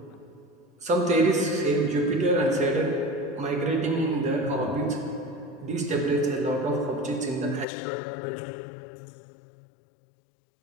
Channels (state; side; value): drops out; right; at 7.7 s